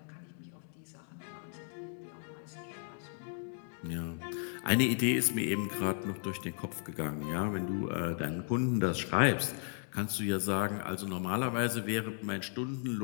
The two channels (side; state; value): right; silent; 54 dB below the other